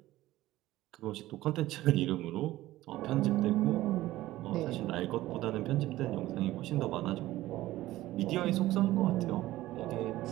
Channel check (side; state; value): left; quieter; 16.1 dB